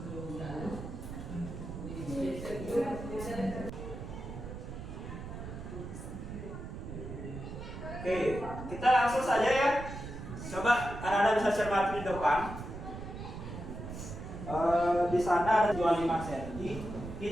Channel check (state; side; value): noise; right; rumble, 9 dB below the sound